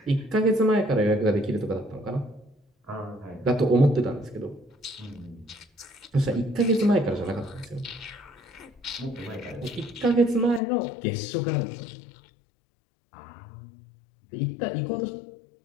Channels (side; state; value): right; drops out; at 10.6 s